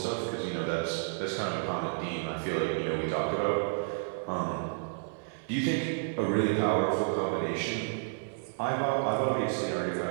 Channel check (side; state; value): left; silent; 57 dB below the other